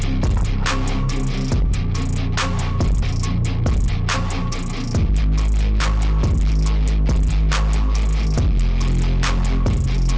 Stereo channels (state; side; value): identical; both; correlation 1.00